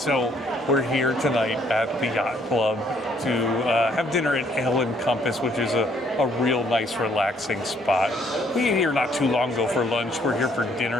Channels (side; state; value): both; normal; correlation 0.66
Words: we're here tonight at the Yacht Club to have dinner at Ale & Compass, which is a real nice, relaxing spot. We ate here not too long ago for lunch. We're here for